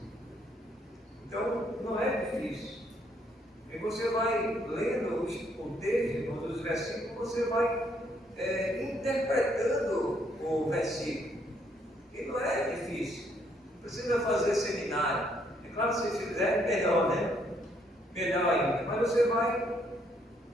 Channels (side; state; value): both; normal; correlation 0.70